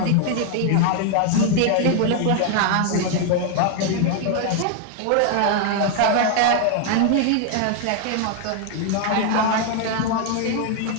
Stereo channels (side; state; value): both; different; correlation 0.00